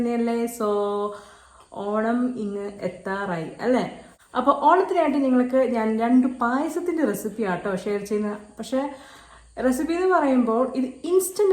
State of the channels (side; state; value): both; identical; correlation 1.00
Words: ഓണം ഇങ്ങ് എത്താറായി അല്ലേ? അപ്പോൾ ഓണത്തിനായിട്ട് നിങ്ങൾക്ക് ഞാൻ 2 പായസത്തിൻ്റെ റെസിപ്പി ആട്ടോ ഷെയർ ചെയ്യുന്ന. പക്ഷേ റെസിപ്പി എന്ന് പറയുമ്പോൾ ഇത്